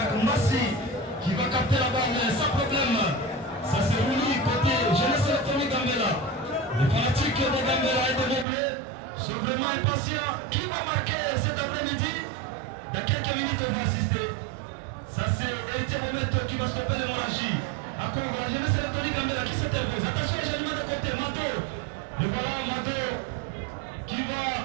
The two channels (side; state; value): left; drops out; at 8.5 s